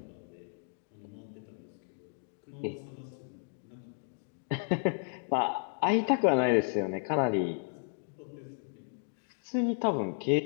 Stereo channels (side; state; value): right; silent; digital silence